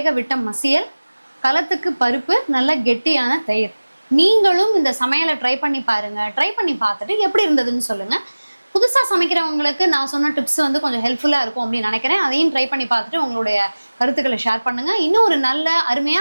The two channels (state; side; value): inverted; both; correlation -1.00